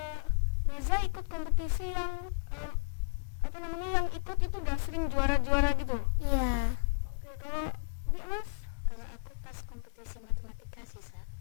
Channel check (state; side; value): silent; right; digital silence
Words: Miza ikut kompetisi yang yang ikut itu udah sering juara-juara gitu? Iya. Oke. Kalau Mas? Kalau aku pas kompetisi matematika sih